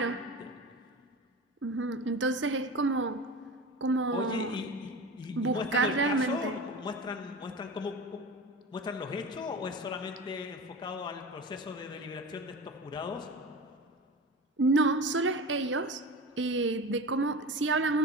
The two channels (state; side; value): normal; both; correlation 0.30